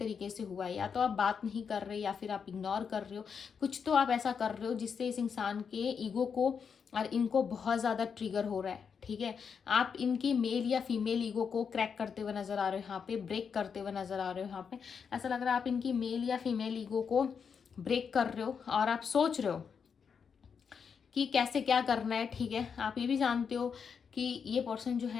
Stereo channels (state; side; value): quieter; right; 6.4 dB